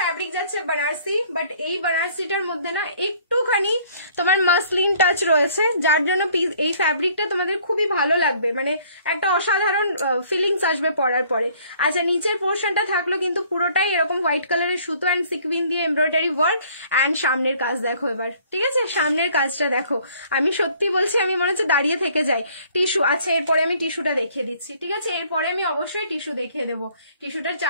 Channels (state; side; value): inverted; both; correlation -0.58